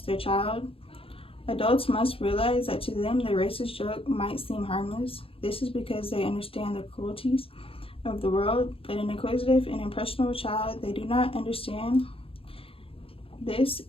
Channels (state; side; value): late; right; 0.27 ms